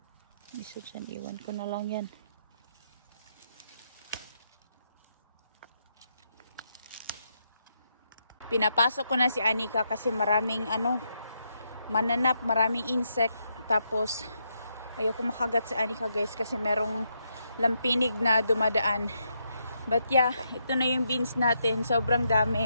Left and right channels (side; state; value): both; inverted; correlation -0.79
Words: Isa dyan, iwan ko na lang yan. Pinapasok ko na si Anika kasi maraming mananap, maraming insect. Tapos ayoko makagat si Anika, guys, kasi merong lampinig na dumadaan. But yeah, ito na yung beans natin. Sobrang dami.